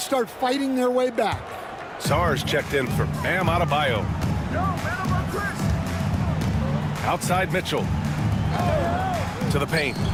start fighting their way back. Sar's checked in for Bam Adebayo. Outside Mitchell. To the paint.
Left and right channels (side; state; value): both; identical; correlation 1.00